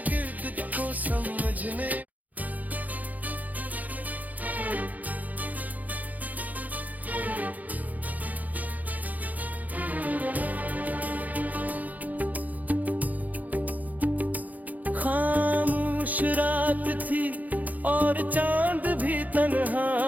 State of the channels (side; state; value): left; late; 0.079 ms